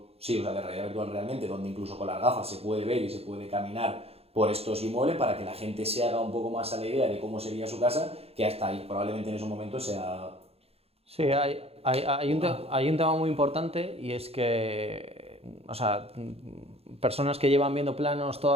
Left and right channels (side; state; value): left; late; 0.29 ms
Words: de realidad virtual realmente, donde incluso con las gafas se puede ver y se puede caminar por estos inmuebles para que la gente se haga un poco más a la idea de cómo sería su casa, que hasta ahí probablemente en esos momentos sea... Sí, hay un tema muy importante y es que, o sea, personas que llevan viendo planos